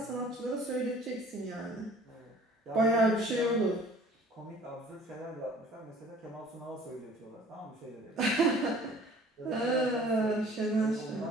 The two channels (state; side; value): normal; both; correlation 0.51